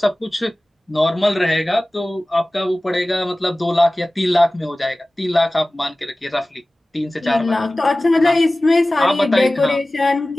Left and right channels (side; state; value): both; normal; correlation 0.98